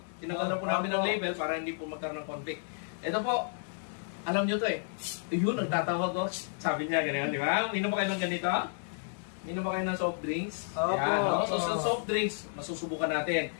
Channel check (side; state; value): right; silent; digital silence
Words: Tinanggal na po namin ang label para hindi po magkaroon ng conflict. Ito po, alam nyo to eh. Yun, nagtatawag ko. Sabi niya, ganyan, di ba? Minom ba kayo ng ganito? Minom ba kayo ng soft drinks? Yan, no? So, sa soft drinks, masusubukan natin.